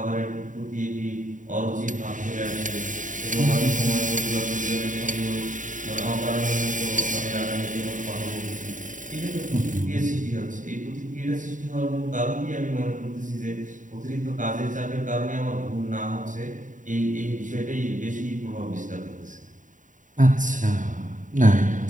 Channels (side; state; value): left; late; 0.37 ms